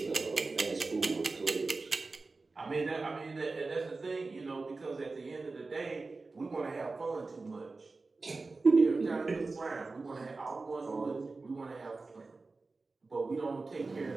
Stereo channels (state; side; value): quieter; left; 3.7 dB